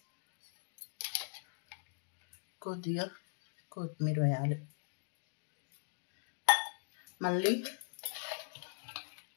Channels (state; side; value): silent; right; digital silence